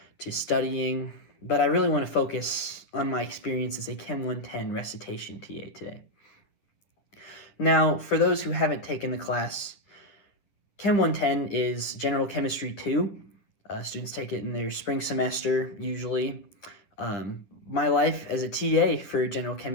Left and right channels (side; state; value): right; late; 10 ms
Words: to studying, but I really want to focus on my experience as a Chem 110 recitation TA today. Now, for those who haven't taken the class, Chem 110 is General Chemistry 2. Students take it in their spring semester, usually. My life as a TA for General